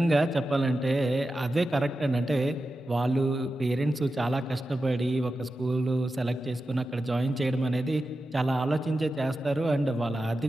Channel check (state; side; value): normal; both; correlation 0.92